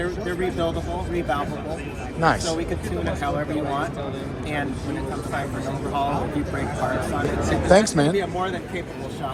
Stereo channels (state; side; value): identical; both; correlation 1.00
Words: rebuildable, revalvable. Nice. So we could tune it however you want. And when it comes time for an overhaul, if you break parts on it, Thanks, man. It'd be a more than capable